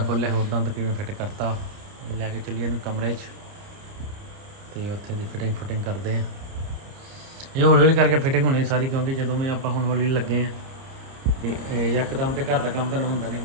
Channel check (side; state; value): left; late; 30 ms